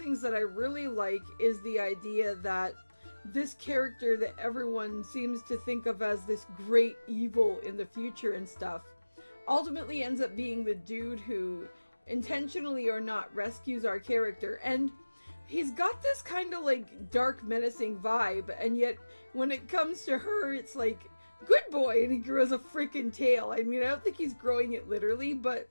that I really like is the idea that this character that everyone seems to think of as this great evil in the future and stuff ultimately ends up being the dude who intentionally or not rescues our character. And he's got this kind of like dark menacing vibe, and yet when it comes to her, it's like, good boy, and he grows a freaking tail. I mean, I don't think he's growing it literally, but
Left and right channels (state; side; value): inverted; both; correlation -1.00